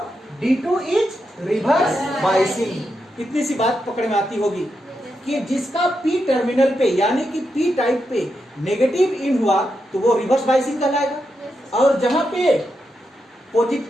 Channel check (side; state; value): both; normal; correlation 0.85